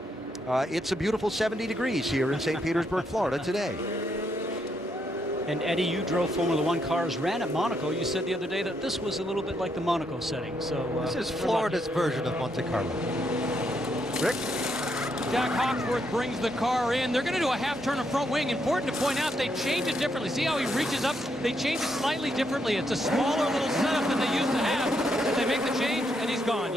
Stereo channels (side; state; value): both; normal; correlation 0.77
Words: It's a beautiful 70 degrees here in St. Petersburg, Florida today. And Eddie, you drove Formula One cars, ran at Monaco. You said the other day that this was a little bit like the Monaco setting. So this is Florida's version of Monte Carlo. Rick? Jack Hawksworth brings the car in. They're going to do a half turn of front wing. Important to point out, they change it differently. See how he reaches up? They change it slightly differently. It's a smaller little setup than they used to have. They make the change, and he's gone.